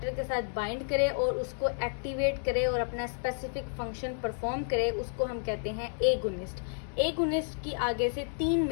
के साथ बाइंड करे और उसको एक्टिवेट करे और अपना स्पेसिफिक फंक्शन परफॉर्म करे, उसको हम कहते हैं एगोनिस्ट। एगोनिस्ट की आगे से 3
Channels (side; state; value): right; silent; digital silence